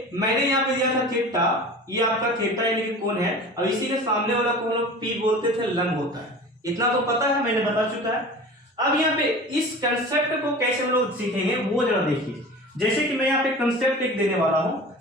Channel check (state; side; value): normal; both; correlation 0.37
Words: मैंने यहाँ पे दिया था थीटा, ये आपका थीटा यानी कि कोण है, और इसी के सामने वाला कोण लोग पी बोलते थे, लंब होता है, इतना तो पता है, मैंने बता चुका है। अब यहाँ पे इस कंसेप्ट को कैसे हम लोग सीखेंगे वो जरा देखिए। जैसे कि मैं यहाँ पे कंसेप्ट एक देने वाला हूं,